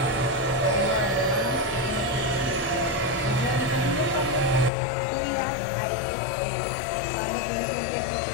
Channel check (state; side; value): drops out; right; at 4.7 s